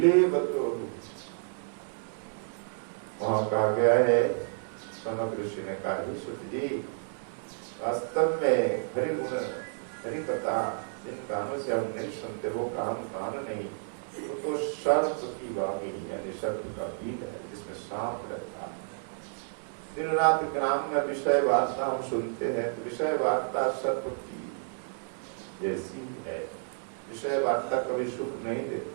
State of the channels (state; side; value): silent; left; digital silence